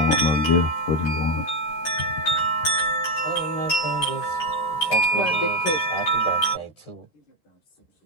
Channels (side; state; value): right; late; 13 ms